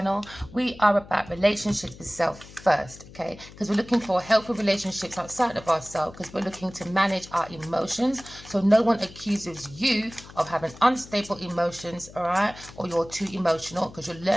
We are about relationships with self first, okay? Because we're looking for healthy relationships outside of ourselves, because we're looking to manage our emotions so no one accuses you of having unstable emotions, all right? Or you're too emotional, because you're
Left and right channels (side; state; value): left; noise; hum, 19 dB below the sound